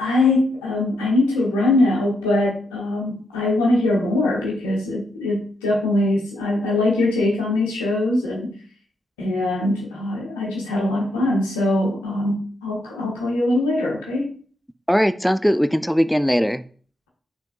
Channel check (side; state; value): both; normal; correlation 0.81